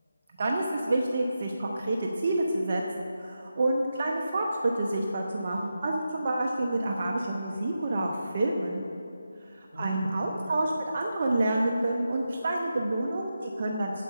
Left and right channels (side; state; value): both; inverted; correlation -0.89